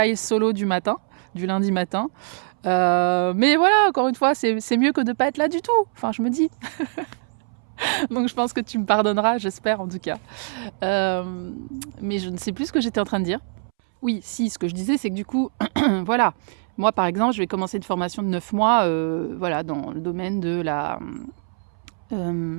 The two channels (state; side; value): silent; left; 63 dB below the other